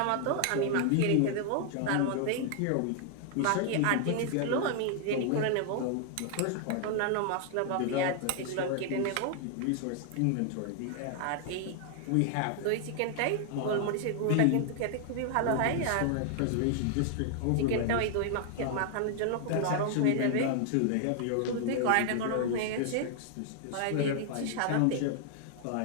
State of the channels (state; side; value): different; both; correlation 0.00